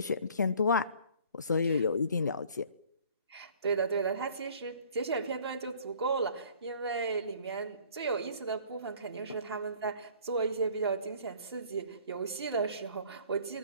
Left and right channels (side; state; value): both; inverted; correlation -0.53